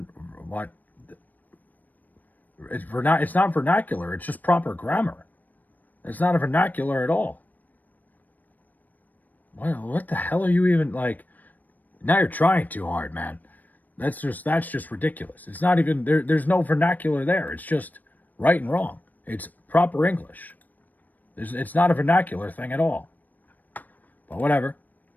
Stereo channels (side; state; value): right; late; 0.084 ms